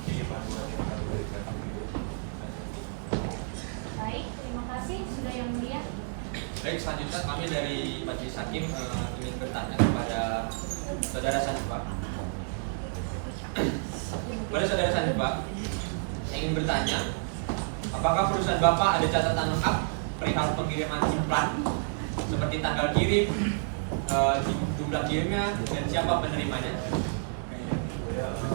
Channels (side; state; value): left; silent; 58 dB below the other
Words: panduan Baik, selanjutnya kami dari Majelis Hakim ingin bertanya kepada Saudara Sanjiva. Pada Saudara Sanjiva, saya ingin bertanya, apakah perusahaan Bapak ada catatan lengkap perihal pengiriman implan seperti tanggal kirim, jumlah kirimnya, dan siapa penerimanya? Kami sudah